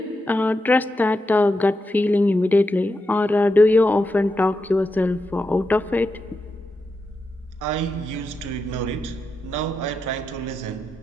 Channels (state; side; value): normal; both; correlation 0.87